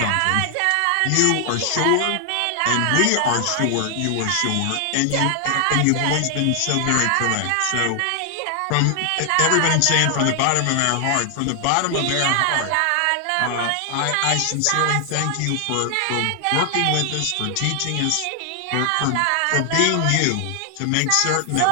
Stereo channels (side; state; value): both; different; correlation 0.00